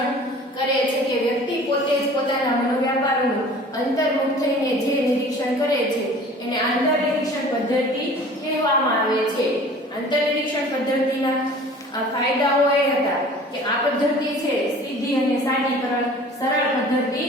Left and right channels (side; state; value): both; normal; correlation 0.46